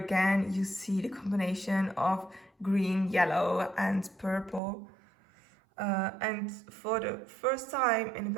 you see the combination of green, yellow and purple. And for the first time in a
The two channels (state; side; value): drops out; left; at 4.6 s